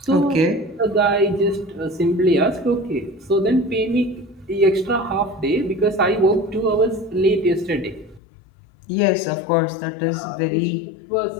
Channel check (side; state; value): right; drops out; at 8.2 s